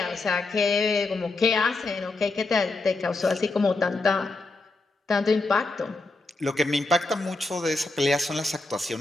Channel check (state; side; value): quieter; right; 3.3 dB